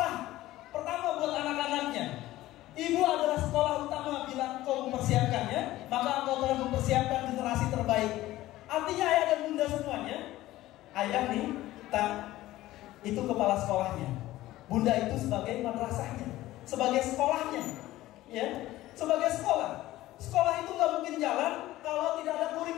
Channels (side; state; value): right; quieter; 16.1 dB